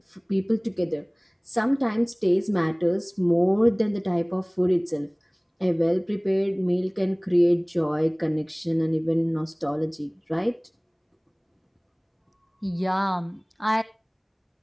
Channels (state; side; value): identical; both; correlation 1.00